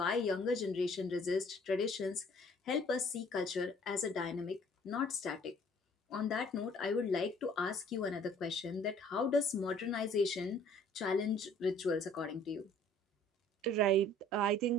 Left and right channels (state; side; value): normal; both; correlation 0.55